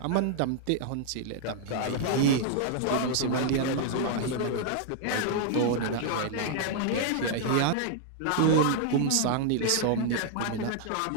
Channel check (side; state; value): both; different; correlation -0.01